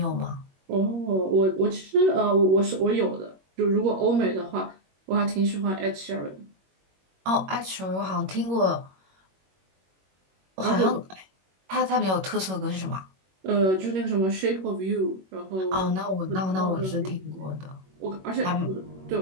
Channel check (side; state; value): left; late; 21 ms